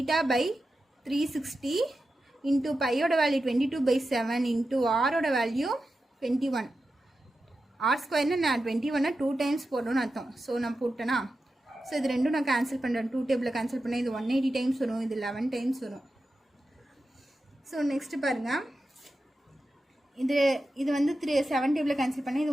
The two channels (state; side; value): normal; both; correlation 0.91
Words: into பையோட வேல்யூ 22/7 இன்டூ ஆரோட வேல்யூ 21. r² நான் 21 2 டைம்ஸ் போடணும்னு அர்த்தம். ஸோ நான் போட்டேன்னா, ஸோ இது ரெண்டும் நான் கேன்சல் பண்ணுறேன். 2 டேபிளில் கேன்சல் பண்ணேன். இது 180 டைம்ஸ் வரும், இது 11 டைம்ஸ் வரும். ஸோ நெக்ஸ்ட்டு பாருங்கள், இது வந்து 7 டேபிளில் கேன்சல் பண்ணேன்.